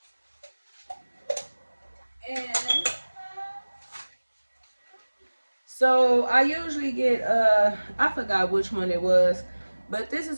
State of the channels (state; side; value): inverted; both; correlation -1.00